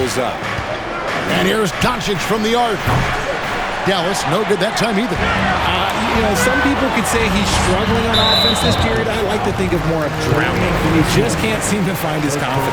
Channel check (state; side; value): identical; both; correlation 1.00